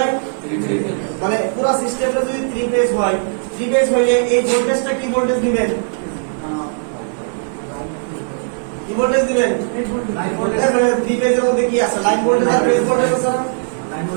মানে পুরো সিস্টেমটা যদি 3 ফেজ হয় 3 ফেজ হইলে এই ভোল্টেজটা কি ভোল্টেজ দিবেন কি ভোল্টেজ দিবেন 3 ফেজের মধ্যে কি আছে লাইন ভোল্টেজ আর ফেজ ভোল্টেজ আছে না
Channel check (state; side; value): silent; left; digital silence